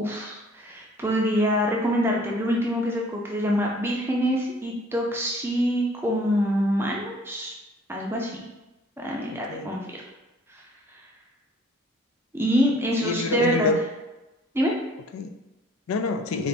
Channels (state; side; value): normal; both; correlation 0.55